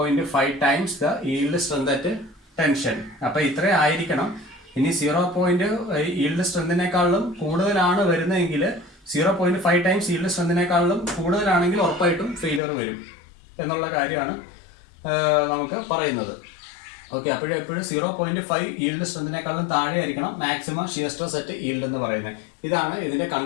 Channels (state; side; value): drops out; right; at 12.6 s